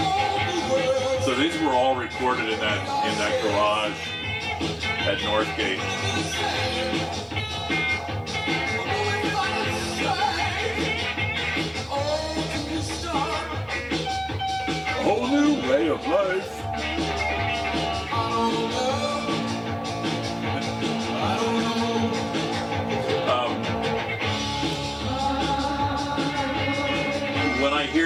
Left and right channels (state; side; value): identical; both; correlation 1.00